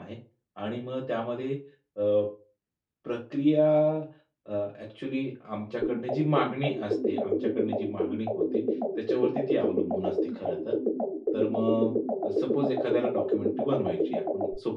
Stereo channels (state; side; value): identical; both; correlation 1.00